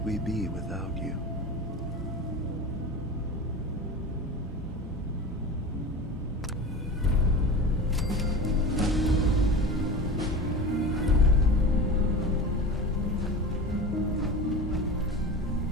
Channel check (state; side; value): normal; both; correlation 0.31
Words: we be without you?